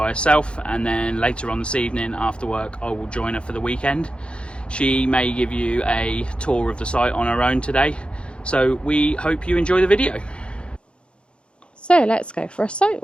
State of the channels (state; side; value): late; right; 0.057 ms